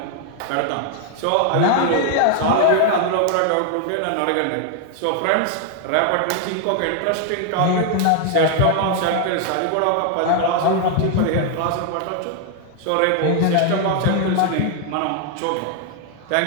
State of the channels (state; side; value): different; both; correlation 0.00